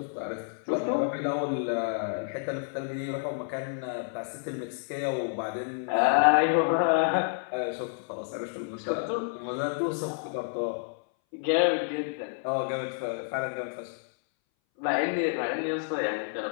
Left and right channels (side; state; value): right; silent; 58 dB below the other